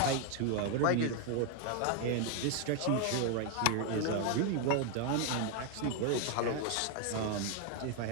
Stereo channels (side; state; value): both; different; correlation 0.01